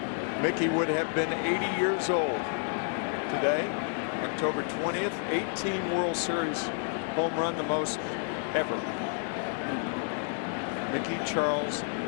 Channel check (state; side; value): silent; right; 57 dB below the other